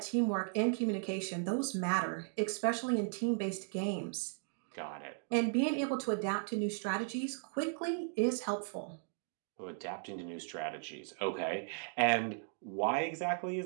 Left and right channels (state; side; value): silent; left; 53 dB below the other